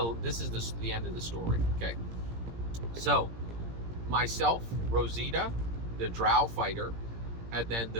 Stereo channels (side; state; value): left; late; 17 ms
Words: end of the story. Okay. So, myself, Rosita, the drow fighter, and then